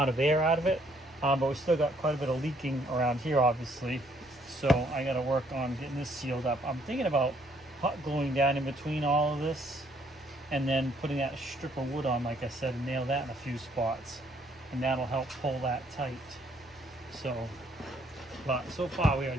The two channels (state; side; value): normal; both; correlation 0.66